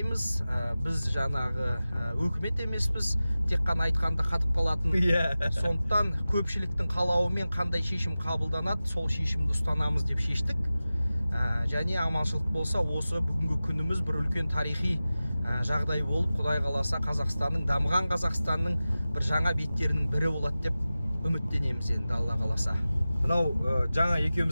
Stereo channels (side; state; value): both; inverted; correlation -0.96